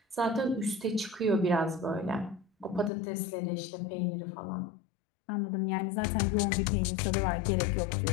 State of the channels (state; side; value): drops out; right; at 2.9 s